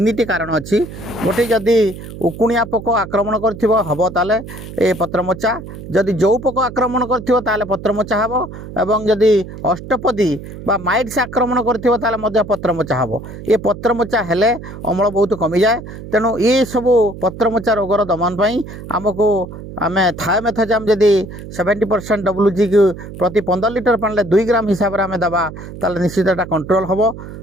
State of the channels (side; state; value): right; noise; hum, 12 dB below the sound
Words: कारण अच्छी गोटे जदि उकुणिया पोक आक्रमण करब ताले ए पत्रमोचा जदि जो पोक आक्रमण कर पत्रमोचा हम एवं जदि अष्टपदी बा माइट्स आक्रमण कर पत्रमोचा हम ये पत्रमोचा हेले अमल बहुत कमी जाए तेणु ये सब पत्रमोचा रोगर दमन पर आमको आम थायोमेथाजाम जदि 70% WG की प्रति 15 लिटर पानी 2 ग्राम हिसाब से आम दबा ताले निश्चित कंट्रोल हम